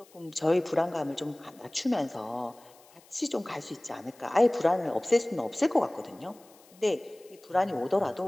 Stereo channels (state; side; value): noise; left; hiss, 27 dB below the sound